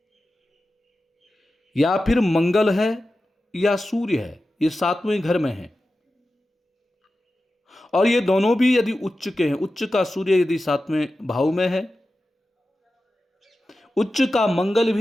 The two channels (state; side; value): normal; both; correlation 0.93